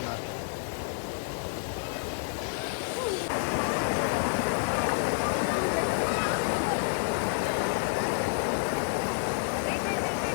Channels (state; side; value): silent; right; digital silence